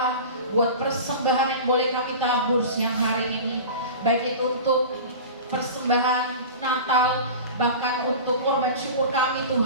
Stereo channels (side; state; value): both; inverted; correlation -0.33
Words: buat persembahan yang boleh kami tabur siang hari ini, baik itu untuk persembahan Natal, bahkan untuk korban syukur kami